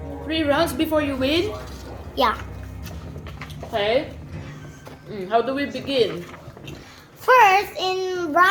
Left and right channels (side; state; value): both; identical; correlation 1.00